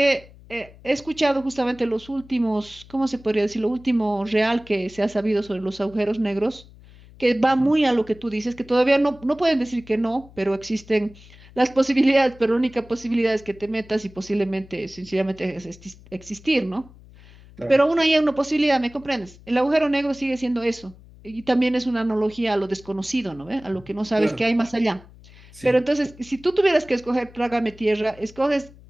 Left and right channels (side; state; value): left; noise; hum, 22 dB below the sound